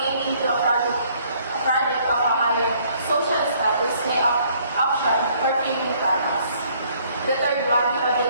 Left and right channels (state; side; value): inverted; both; correlation -0.63